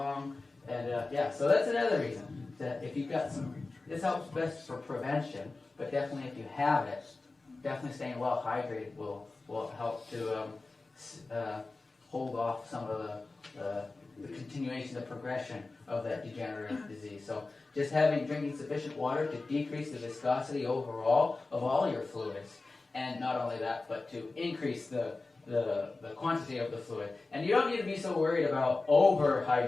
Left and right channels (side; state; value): right; quieter; 3.5 dB